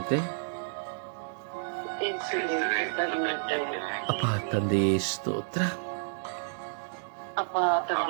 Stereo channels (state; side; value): silent; left; 58 dB below the other